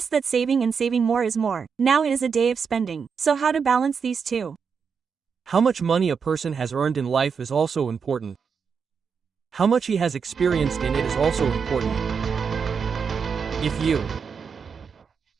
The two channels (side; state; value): left; quieter; 6.1 dB